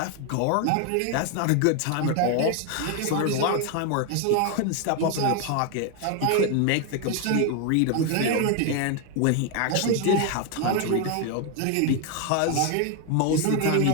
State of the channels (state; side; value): different; both; correlation 0.01